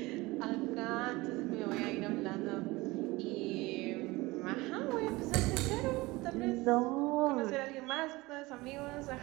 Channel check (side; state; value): left; quieter; 21.4 dB